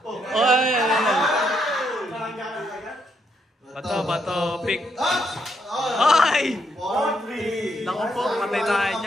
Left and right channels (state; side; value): normal; both; correlation 0.76